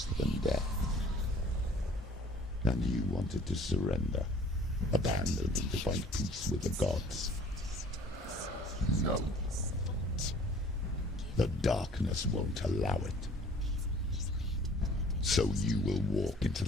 than death. And you wanted to surrender, abandon and to find peace with the gods. No. The darkness won't allow it. So you will walk into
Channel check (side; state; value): both; normal; correlation 0.52